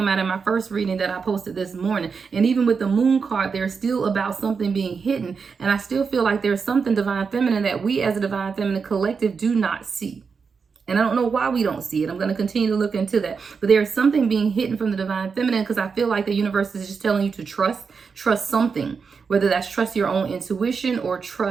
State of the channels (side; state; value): left; quieter; 5.5 dB